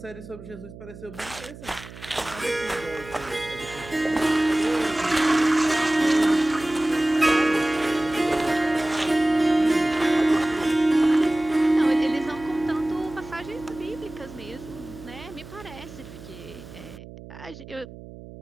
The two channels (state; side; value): noise; right; hum, 16 dB below the sound